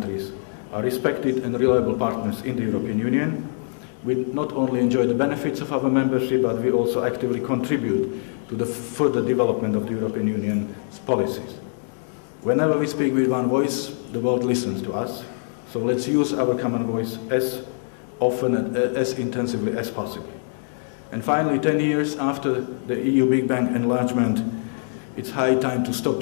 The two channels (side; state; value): right; silent; digital silence